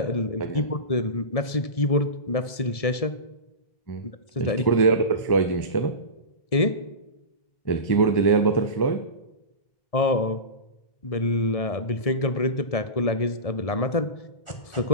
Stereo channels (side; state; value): right; late; 1.7 ms